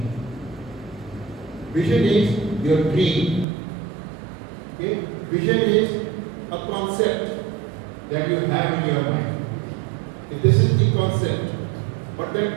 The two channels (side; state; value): left; drops out; at 3.5 s